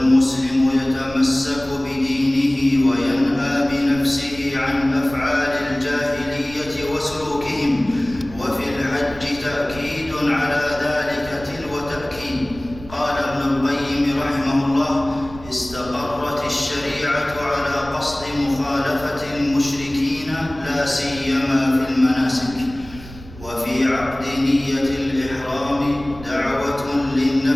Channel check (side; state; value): right; noise; rumble, 17 dB below the sound